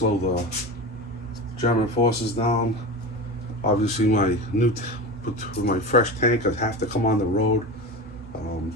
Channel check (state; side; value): normal; both; correlation 0.26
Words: the German forces down. Obviously, my fresh tank, I'd have to come on the road.